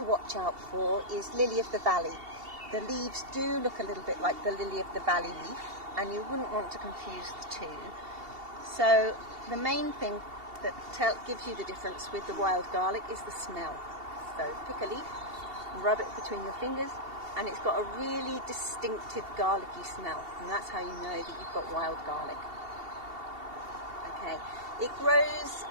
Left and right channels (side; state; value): left; late; 2.7 ms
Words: watch out for is lily of the valley. The leaves do look a little bit like the lily of the valley leaf, and you wouldn't want to confuse the two. So the main thing that gives you the difference with the wild garlic is the smell. So pick a leaf and rub it between your fingers, and it's got a really distinctive garlicky smell, and that's how you know that you've got wild garlic. Okay, it grows